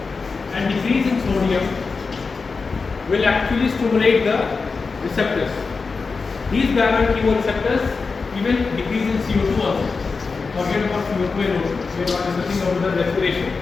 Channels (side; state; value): right; quieter; 4.6 dB